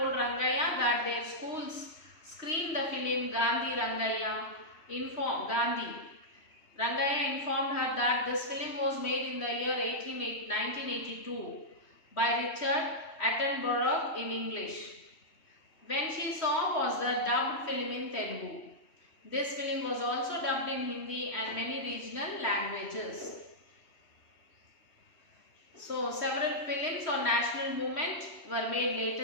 that their schools screened the film Gandhi Rangayya. Rangayya informed her that this film was made in the year 1982 by Richard Attenborough in English. When she saw was the dubbed film in Telugu. This film was also dubbed in Hindi and many regional languages. So several films on national movement were made later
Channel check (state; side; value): late; right; 3.1 ms